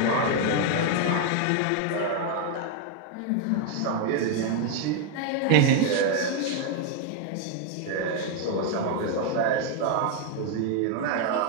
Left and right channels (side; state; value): both; different; correlation 0.01